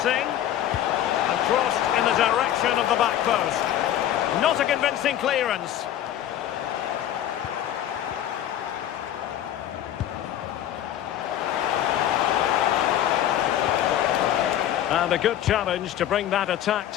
And crossed in the direction of the back post. Not a convincing clearance. And a good challenge to bring that attack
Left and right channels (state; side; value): quieter; right; 11.6 dB